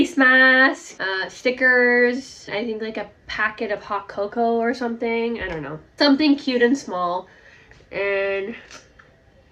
mask, stickers, I think like a packet of hot cocoa or something. I don't know. Something cute and small. And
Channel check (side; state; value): both; identical; correlation 1.00